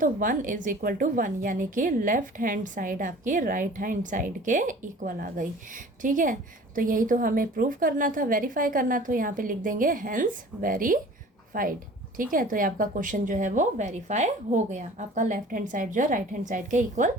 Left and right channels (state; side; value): normal; both; correlation 0.45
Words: 1 = 1, यानी कि लेफ़्ट हैंड साइड आपकी राइट हैंड साइड के इक्वल आ गई। ठीक है, तो यही तो हमें प्रूव करना था, वेरीफाई करना, तो यहाँ पे लिख देंगे हेंस वेरीफाइड। ठीक है, तो ये आपका क्वेश्चन जो है वो वेरीफाई हो गया, आपका लेफ्ट हैंड साइड जो है राइट हैंड साइड के इक्वल